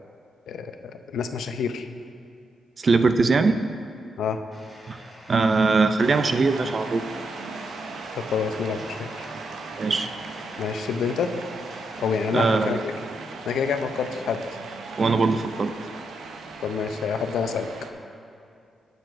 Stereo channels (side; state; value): both; normal; correlation 0.81